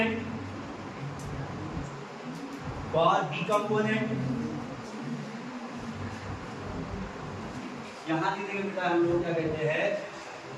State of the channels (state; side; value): identical; both; correlation 1.00